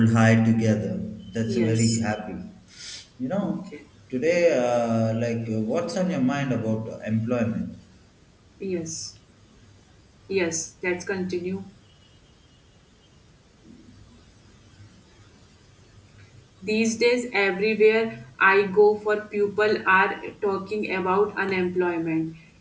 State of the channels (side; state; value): both; identical; correlation 1.00